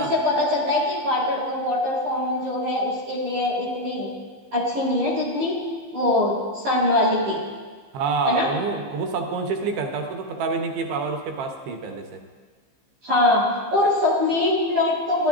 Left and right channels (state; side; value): late; left; 15 ms